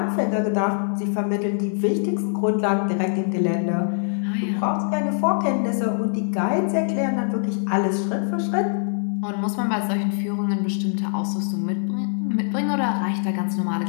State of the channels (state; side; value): silent; right; digital silence